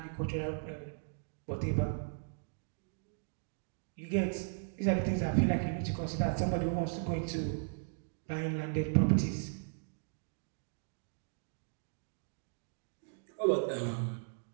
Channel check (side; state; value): left; silent; digital silence